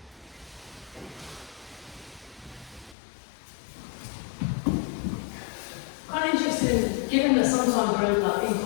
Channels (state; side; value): drops out; right; at 3.0 s